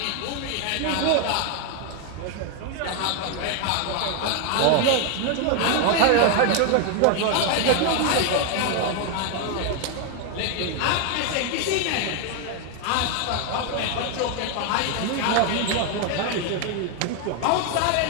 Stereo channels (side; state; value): both; different; correlation 0.01